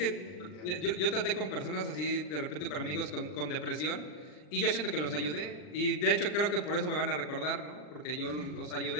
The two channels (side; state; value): right; late; 40 ms